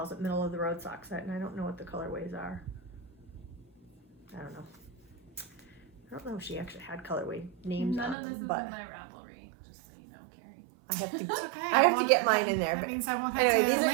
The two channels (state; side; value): drops out; left; at 8.2 s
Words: it, middle of the road sock set, and I don't know what the colorways are. I don't know. I don't know if she actually had colorway names None on of this them, is but in my Ravelry, just so you know, Carrie. I have to. It's okay. I have to won't- get mine in there. That But means I won't have anyway, to these are